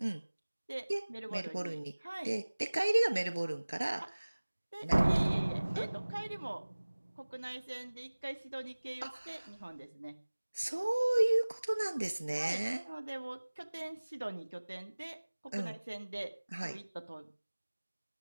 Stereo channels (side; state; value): both; inverted; correlation -1.00